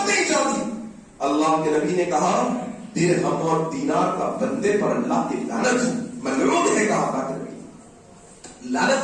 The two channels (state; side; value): identical; both; correlation 1.00